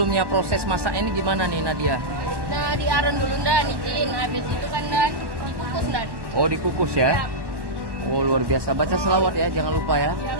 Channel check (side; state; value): left; late; 1.1 ms